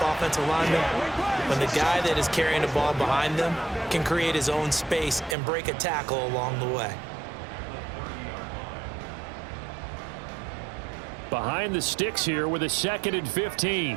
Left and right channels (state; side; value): drops out; left; at 5.4 s